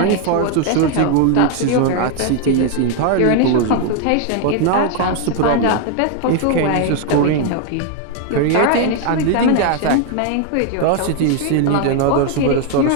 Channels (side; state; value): both; different; correlation 0.01